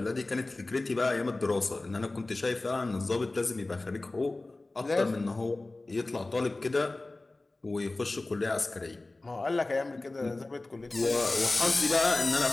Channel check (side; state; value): right; quieter; 3.0 dB